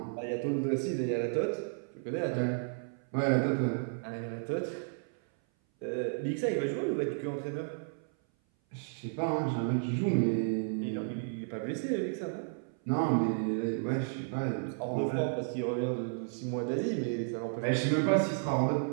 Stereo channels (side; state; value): left; silent; 56 dB below the other